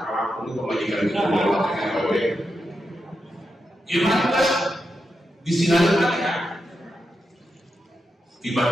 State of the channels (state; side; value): normal; both; correlation 0.87